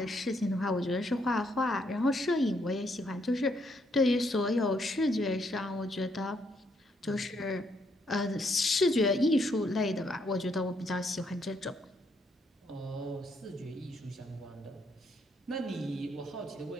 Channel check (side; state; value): both; normal; correlation 0.74